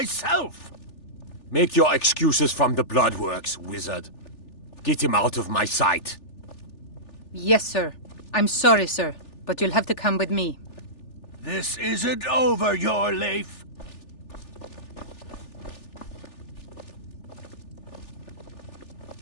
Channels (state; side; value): late; right; 3.4 ms